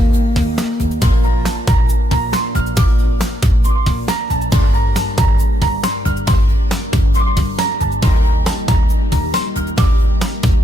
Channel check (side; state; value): both; normal; correlation 0.80